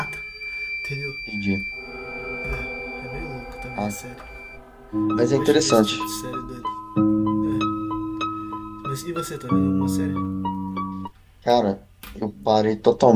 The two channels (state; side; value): identical; both; correlation 1.00